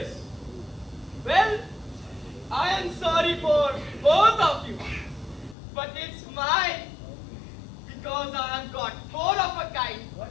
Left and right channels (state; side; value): drops out; right; at 5.6 s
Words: Well, I am sorry for both of you. But it's mine. Because I have got four of a kind.